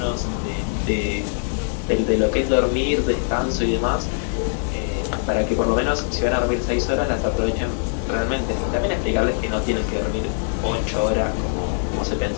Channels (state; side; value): silent; right; 64 dB below the other